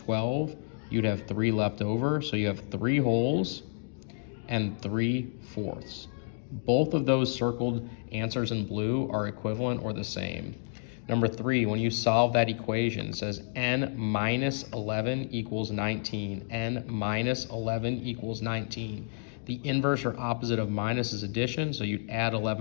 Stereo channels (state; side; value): silent; right; digital silence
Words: You'd have 3 left over, so you have 3 wholes and 3/4. Both of those circled answers in blue are equivalent or the same. Number 3, when you solve that equation, it says n minus 11 equals 19. n minus 11 equals 19. The inverse or opposite of minus is addition, so you'd add